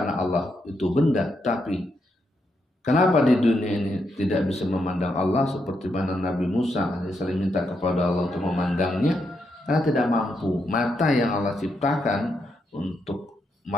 Allah itu benda, tapi kenapa di dunia ini tidak bisa memandang Allah seperti mana Nabi Musa saling minta kepada Allah untuk memandangnya, karena tidak mampu. Mata yang Allah ciptakan untuk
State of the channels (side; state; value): both; normal; correlation 0.81